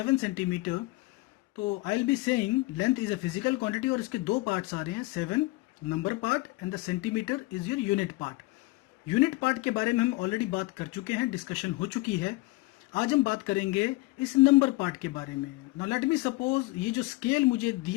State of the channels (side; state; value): right; quieter; 21.4 dB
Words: centimetre, तो I will be saying length is a physical quantity और इसके दो पार्ट्स आ रहे हैं, 7 number part and the centimetre is your unit part. Unit part के बारे में हम ऑलरेडी बात कर चुके हैं, डिस्कशन हो चुकी है। आज हम बात करेंगे इस नंबर पार्ट के बारे में। नाउ लेट मी सपोज ये जो स्केल मुझे